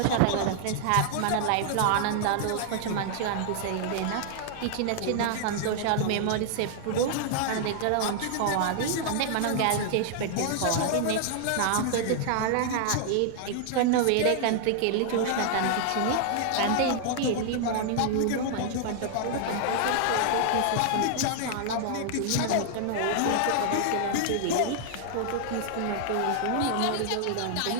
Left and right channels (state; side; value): different; both; correlation -0.01